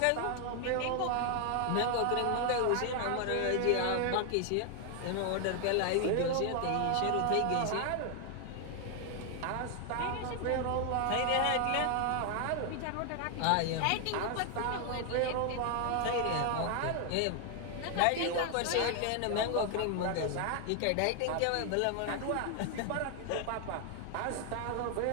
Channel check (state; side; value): different; both; correlation 0.00